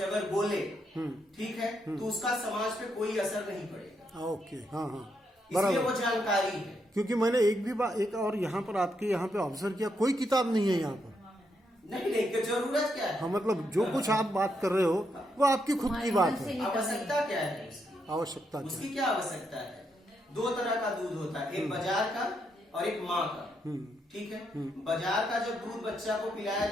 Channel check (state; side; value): normal; both; correlation 0.79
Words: अगर बोले, ठीक है, तो उसका समाज पे कोई असर नहीं पड़ेगा। ओके, हाँ हाँ, इसलिए वो बराबर। जानकारी है। क्योंकि मैंने एक और यहाँ पर आपके यहाँ पे ऑब्जर्व किया, कोई किताब नहीं है यहाँ पर। नहीं नहीं, जरूरत क्या है? हाँ, मतलब जो कुछ आप बात कर रहे हो वो आपकी खुद की बात है। आवश्यकता क्या है उसकी? आवश्यकता उसकी क्या आवश्यकता है? दो तरह का दूध होता है, एक बाजार का और एक माँ का। ठीक है। बाजार का जब दूध बच्चा को पिलाया